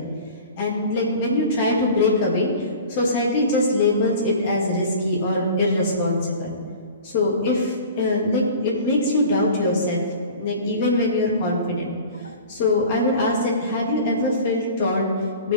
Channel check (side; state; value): both; inverted; correlation -0.41